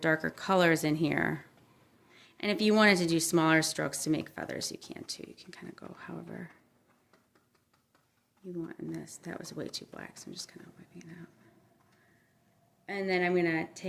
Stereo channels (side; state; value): both; identical; correlation 1.00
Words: colors in here. And if you wanted to do smaller strokes to make feathers, you can too. You can kind of go however you want in this. That was way too black, so I'm just kind of wiping it out. And then I'm going to